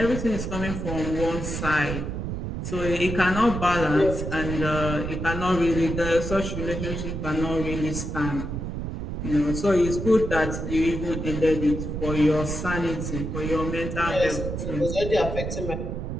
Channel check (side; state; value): right; noise; rumble, 4 dB below the sound